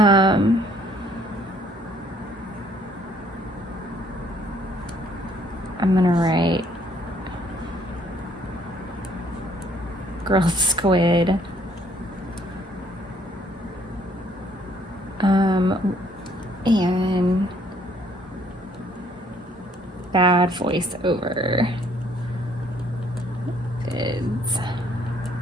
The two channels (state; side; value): normal; both; correlation 0.63